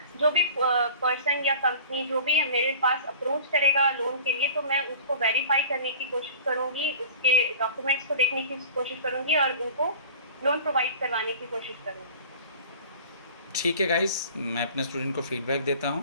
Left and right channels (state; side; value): inverted; both; correlation -0.42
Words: जो भी पर्सन या कंपनी जो भी मेरे पास अप्रोच करेगा लोन के लिए तो मैं उसको वेरीफाई करने की कोशिश करूंगी, उसके डॉक्यूमेंट्स को देखने की कोशिश करूंगी और उनको लोन प्रोवाइड करवाने की कोशिश करूंगी। ठीक है गाइस, मैं अपने स्टूडेंट को फीडबैक देता